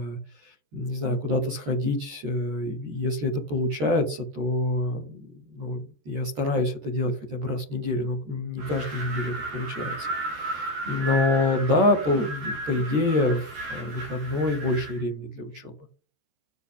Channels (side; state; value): left; late; 14 ms